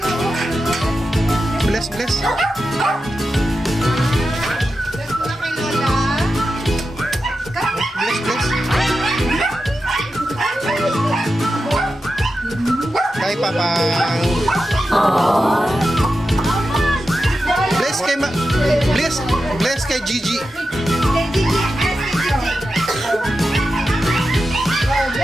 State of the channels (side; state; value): both; normal; correlation 0.90